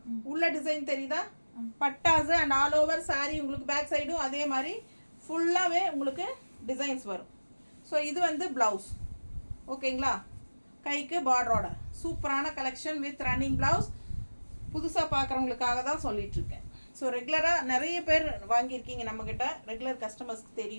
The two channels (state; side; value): inverted; both; correlation -1.00